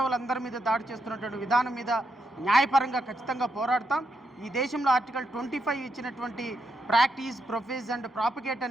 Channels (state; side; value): normal; both; correlation 0.81